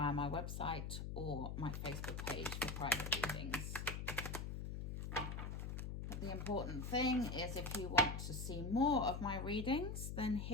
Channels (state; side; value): noise; left; hum, 4 dB below the sound